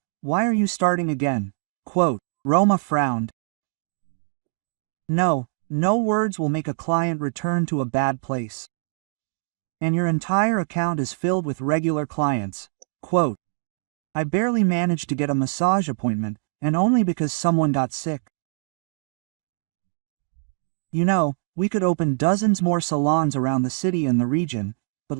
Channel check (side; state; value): left; silent; digital silence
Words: why are you starting again? Quote. Roma frowned. No words will make a client return to a bad place. And your entire account is filled with regular clients. Quote. I barely managed to get a massage appointment, and only because someone got sick. You know, we could open dozens more salons around the city and the region, but